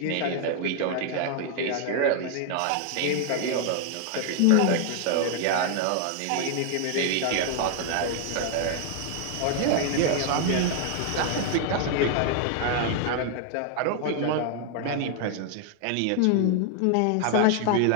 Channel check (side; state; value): both; different; correlation 0.00